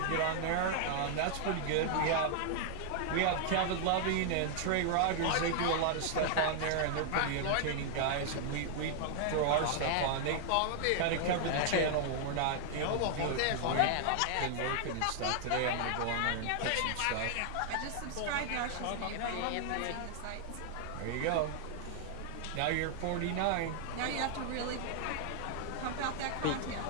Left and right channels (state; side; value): different; both; correlation -0.01